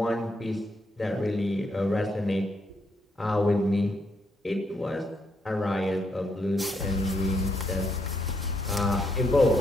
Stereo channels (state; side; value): normal; both; correlation 0.77